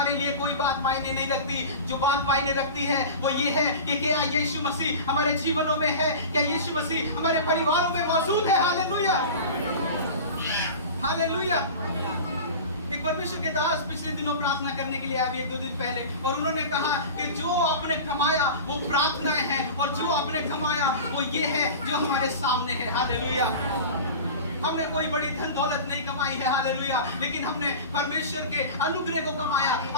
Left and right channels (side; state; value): both; inverted; correlation -0.33